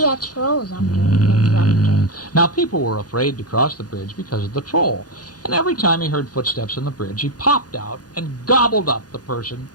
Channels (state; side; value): late; right; 0.69 ms